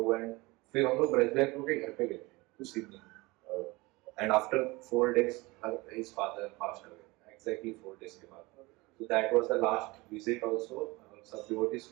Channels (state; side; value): quieter; left; 23.1 dB